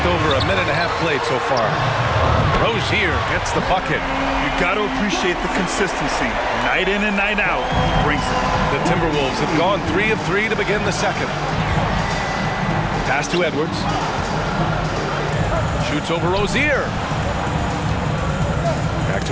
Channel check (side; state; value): both; identical; correlation 1.00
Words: over a minute and a half played so far. Rozier gets the bucket. You got to appreciate the consistency. Night in and night out brings it. The Timberwolves have gone 3 of 3 to begin the second. Pass to Edwards. Shoots over Rozier. Back